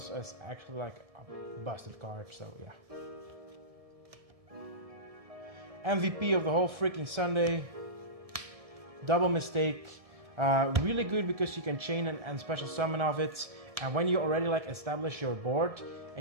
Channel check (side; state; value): left; late; 1.7 ms